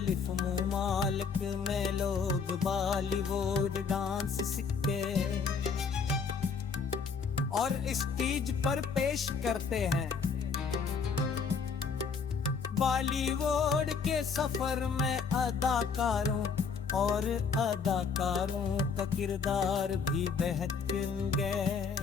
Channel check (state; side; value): quieter; right; 5.6 dB